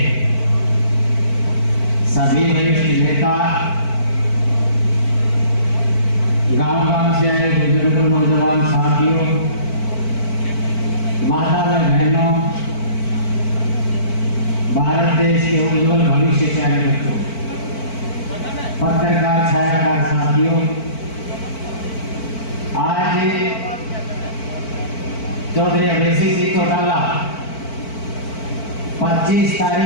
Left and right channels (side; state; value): right; late; 4.5 ms